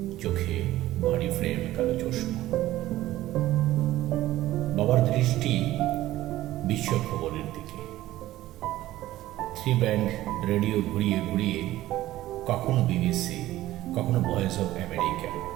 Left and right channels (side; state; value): left; quieter; 15.3 dB